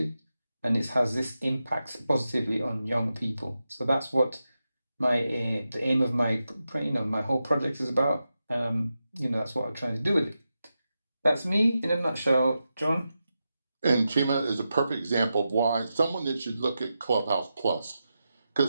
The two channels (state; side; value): inverted; both; correlation -0.89